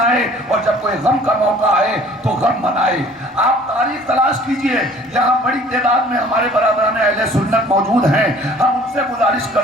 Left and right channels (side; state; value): both; normal; correlation 0.52